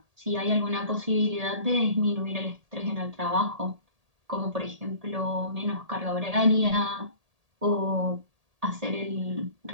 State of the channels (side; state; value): left; late; 1.8 ms